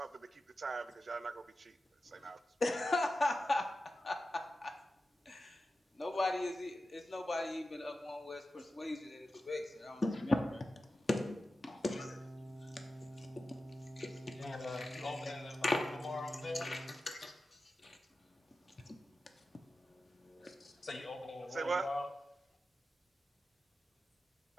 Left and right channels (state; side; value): normal; both; correlation 0.93